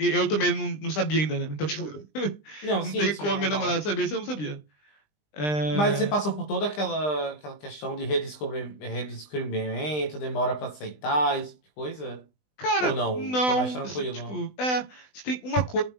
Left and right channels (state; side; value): late; right; 20 ms